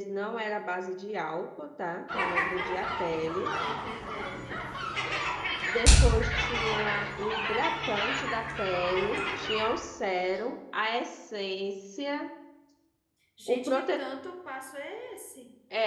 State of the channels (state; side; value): identical; both; correlation 1.00